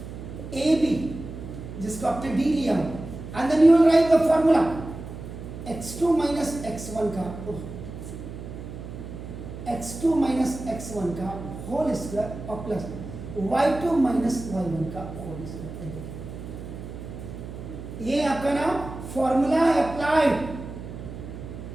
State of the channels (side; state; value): right; noise; hum, 10 dB below the sound